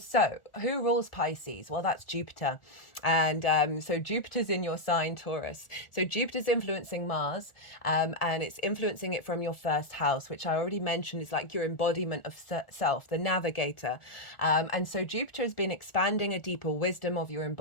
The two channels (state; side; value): late; right; 1.4 ms